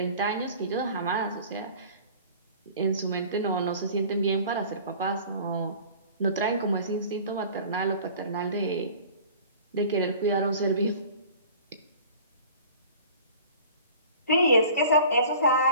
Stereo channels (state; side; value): inverted; both; correlation -0.44